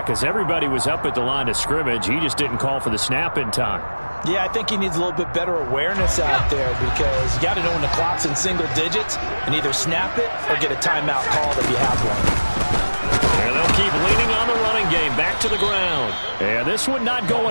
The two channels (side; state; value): both; inverted; correlation -1.00